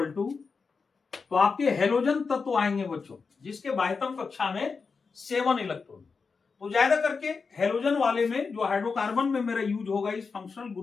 टू, तो आपके हेलोजन तत्व आएंगे बच्चों जिसके बाह्यतम कक्षा में 7 इलेक्ट्रॉन। तो ज्यादा करके हेलोजन वाले में जो हाइड्रोकार्बन में मेरा यूज होगा इस फंक्शनल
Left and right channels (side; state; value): right; quieter; 4.9 dB